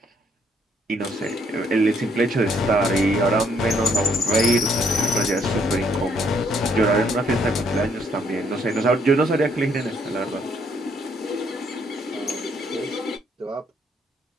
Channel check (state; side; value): normal; both; correlation 0.69